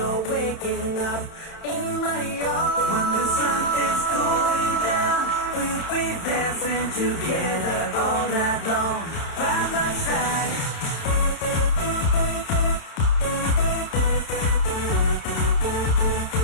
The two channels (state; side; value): late; right; 31 ms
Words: waking up in my arms, when the sun is going down, we'll be dancing together all night long by my side.